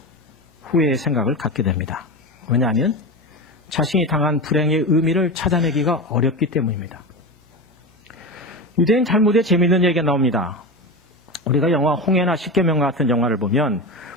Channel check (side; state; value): both; normal; correlation 0.22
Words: 후회의 생각을 갖게 됩니다. 왜냐하면 자신이 당한 불행의 의미를 찾아내기가 어렵기 때문입니다. 유대인 탈무드에 재미있는 얘기가 나옵니다. 우리가 영화 홍해나 십계명 같은 영화를 보면